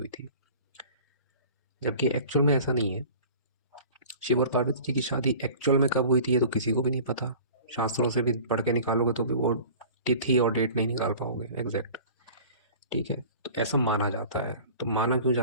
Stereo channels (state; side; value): inverted; both; correlation -0.43